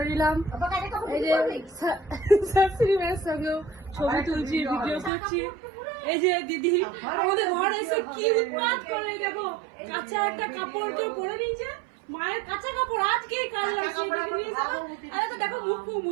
নিলাম। এই যে শাশুড়ি মায়ের সঙ্গেও ছবি তুলছি, ভিডিও করছি। এই যে দিদি আমাদের ঘরে এসে কি উৎপাত করে, দেখো কাঁচা একটা কাপড় কেউ পরে নিয়েছে, মায়ের কাঁচা কাপড় আজকে কাল লাগছে। আরে তো দেখো মুখ ফুক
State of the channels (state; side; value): drops out; left; at 5.1 s